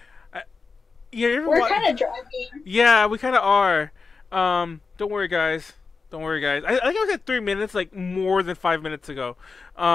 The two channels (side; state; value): right; quieter; 4.6 dB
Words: We're kind of driving. Yeah, we kind of are. Don't worry, guys. Don't worry, guys. I think I was at 3 minutes, like more than 5 minutes ago.